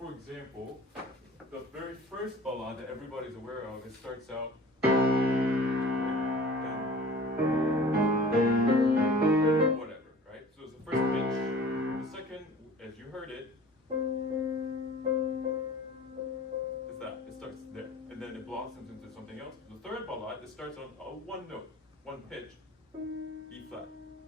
example, the very first ballade that everybody's aware of, it starts out, whatever, right? So it's the first pitch. The second, as you heard it, is that, it starts there, and then it blossoms into something else. The third ballade, it starts on 1 note, 1 pitch, E flat.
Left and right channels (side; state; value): both; normal; correlation 0.44